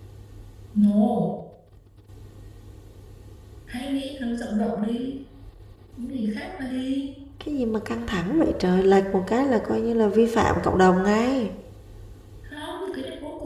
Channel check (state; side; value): identical; both; correlation 1.00